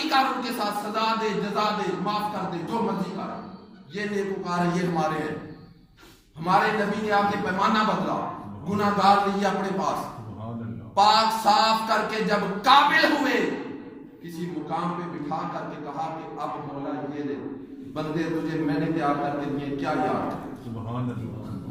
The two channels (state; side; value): identical; both; correlation 1.00